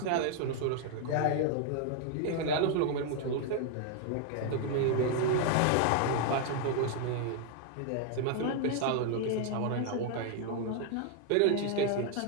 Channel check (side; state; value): both; different; correlation 0.00